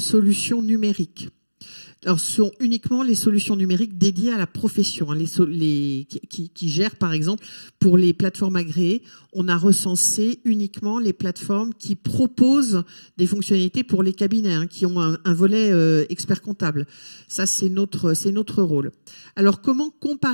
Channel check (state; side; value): inverted; both; correlation -1.00